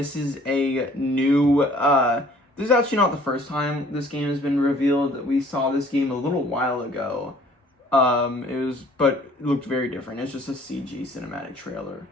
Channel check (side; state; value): both; normal; correlation 0.55